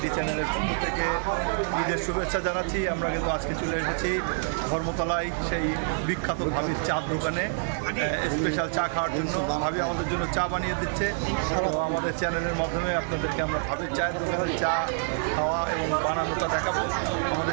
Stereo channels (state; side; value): silent; left; digital silence